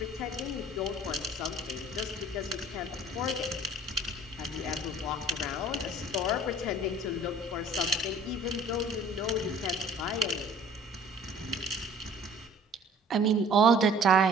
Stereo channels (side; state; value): both; normal; correlation 0.50